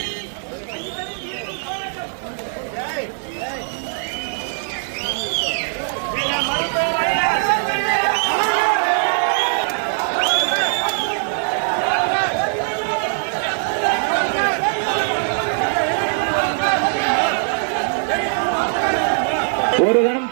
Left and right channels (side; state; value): left; silent; 65 dB below the other